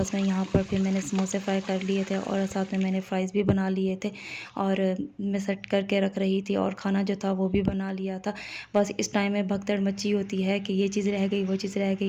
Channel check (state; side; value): identical; both; correlation 1.00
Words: मैं यहाँ पर फिर मैंने समोसे फ्राई कर लिए थे और साथ में मैंने फ़्राइज़ भी बना लिए थे, और मैं सेट करके रख रही थी और खाना जो था वो भी बना लिया था। बस इस टाइम में भगदड़ मची होती है कि ये चीज़ रह गई, वो चीज़ रह